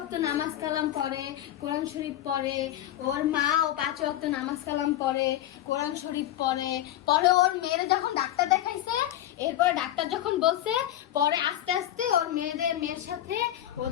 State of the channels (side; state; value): right; quieter; 12.6 dB